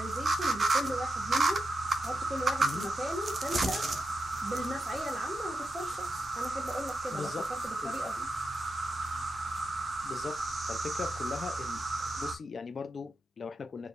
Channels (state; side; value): normal; both; correlation 0.87